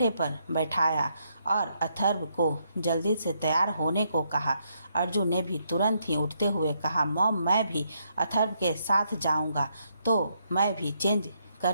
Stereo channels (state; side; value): inverted; both; correlation -0.75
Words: पर बैठाया और अथर्व को जल्दी से तैयार होने को कहा। अर्जुन ने भी तुरंत ही उठते हुए कहा, मॉम मैं भी अथर्व के साथ जाऊंगा, तो मैं भी चेंज